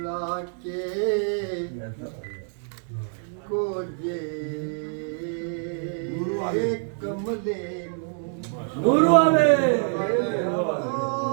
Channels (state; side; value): silent; left; 61 dB below the other